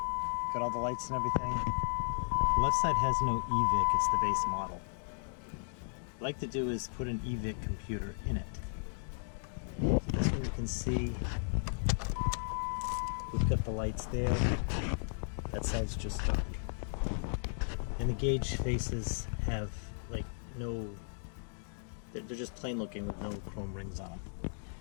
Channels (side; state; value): right; silent; digital silence